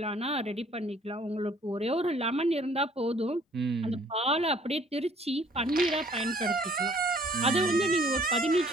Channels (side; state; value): both; normal; correlation 0.58